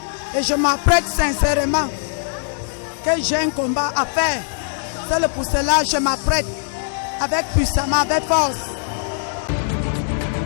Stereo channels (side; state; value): right; silent; 65 dB below the other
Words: et je m'apprête sincèrement que j'ai un combat à faire. C'est pour cela que je m'apprête avec puissamment, avec force.